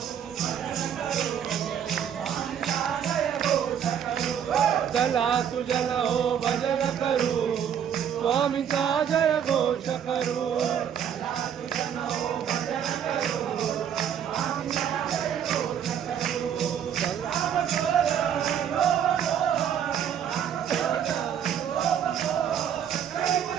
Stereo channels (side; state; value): left; quieter; 8.8 dB